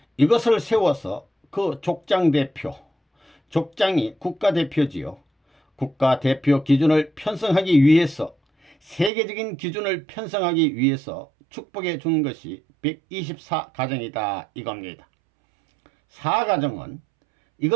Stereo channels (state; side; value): drops out; left; at 9.1 s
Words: 이것을 세워서 그 족장 대표, 족장이 국가대표지요. 국가대표 기준을 편성하기 위해서 세계적인 기준을 편성하기 위해서 축복해 준 것이 124가정이다 이겁니다. 4가정은